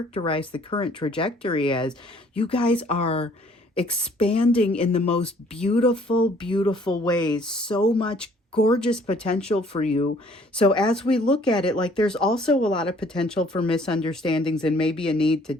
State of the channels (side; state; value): both; normal; correlation 0.59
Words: the current trajectory as, you guys are expanding in the most beautiful, beautiful ways. So much gorgeous potential for you. So as we look at it, like, there's also a lot of potential for misunderstandings and maybe a need to